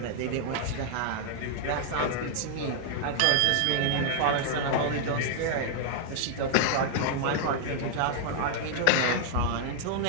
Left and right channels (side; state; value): both; different; correlation -0.01